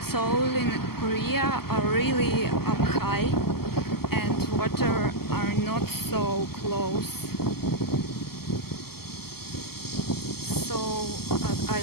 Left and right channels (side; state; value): right; late; 0.95 ms